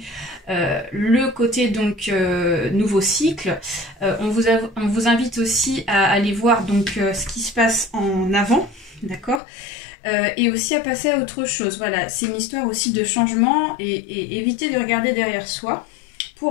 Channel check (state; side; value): drops out; right; at 9.4 s